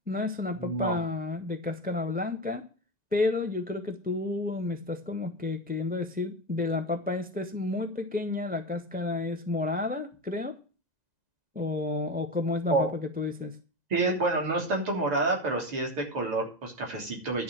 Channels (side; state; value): left; late; 2.0 ms